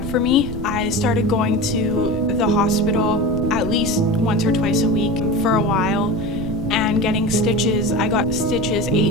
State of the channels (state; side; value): noise; right; rumble, 8 dB below the sound